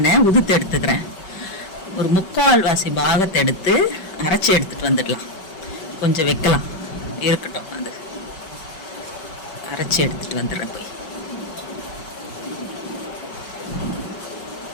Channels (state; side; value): late; right; 5.3 ms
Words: உதுத்து எடுத்துக்கிறேன். ஒரு 3/4 பாகத்தை எடுத்து அரைச்சி எடுத்துட்டு வந்துடலாம். கொஞ்சம் வைக்கலாம், இருக்கட்டும். அது அரைச்சி எடுத்துட்டு வந்துடுறேன். போய்